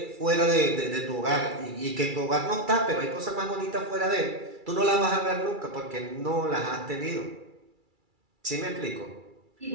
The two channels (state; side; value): late; left; 2.3 ms